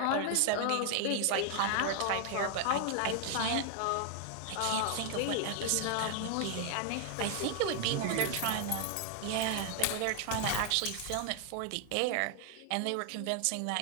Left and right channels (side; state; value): both; different; correlation 0.00